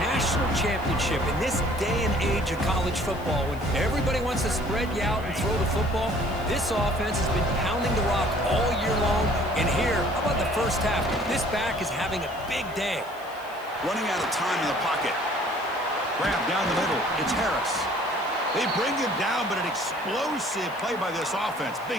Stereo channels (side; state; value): left; noise; hiss, 23 dB below the sound